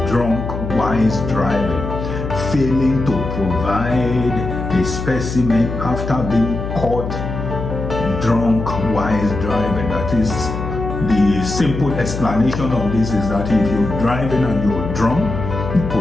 drunk while driving. Failing to provide a specimen after being caught drunk while driving. That is, the simple explanation of this is that if you're driving and you're drunk, the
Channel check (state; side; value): noise; left; hum, 5 dB below the sound